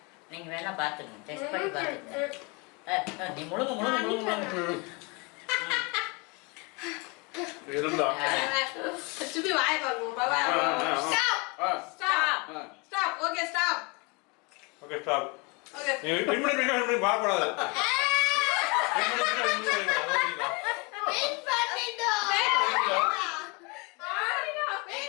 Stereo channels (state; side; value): quieter; right; 29.3 dB